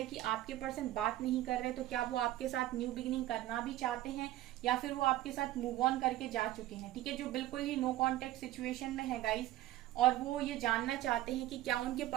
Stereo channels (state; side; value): quieter; left; 15.0 dB